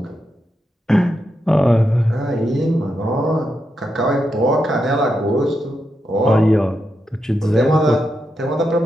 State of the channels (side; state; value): both; normal; correlation 0.85